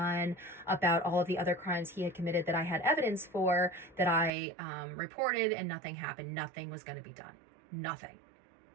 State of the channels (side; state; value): left; drops out; at 4.3 s